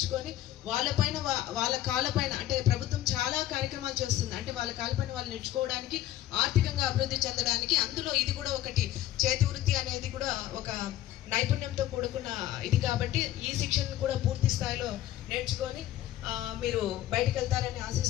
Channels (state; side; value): quieter; right; 13.8 dB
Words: వాళ్ళపైన, వాళ్ళ కాళ్ళపైన, అంటే ప్రభుత్వం చాలా కార్యక్రమాలు చేస్తుంది, అంటే వాళ్ళ కాళ్ళపైన వాళ్ళు నేర్చుకోవడానికి, ఆర్థికంగా అభివృద్ధి చెందడానికి. అందులో ఇది కూడా ఒకటి. చేతి వృత్తి అనేది కూడా ఒక నైపుణ్యంతో కూడుకున్న ఇది. కాబట్టి ఈ శిక్షణను కూడా పూర్తి స్థాయిలో నేర్చుకొని మీరు బయటకు వెళ్తారని